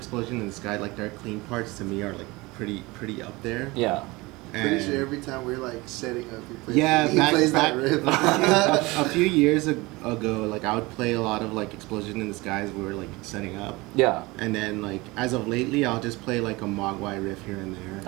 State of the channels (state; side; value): quieter; left; 22.6 dB